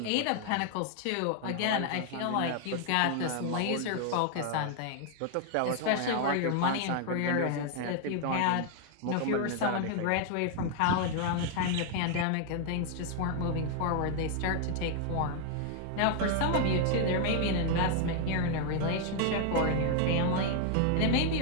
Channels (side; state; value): both; different; correlation 0.00